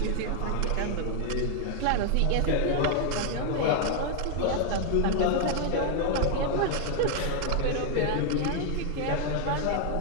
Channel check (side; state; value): both; different; correlation 0.00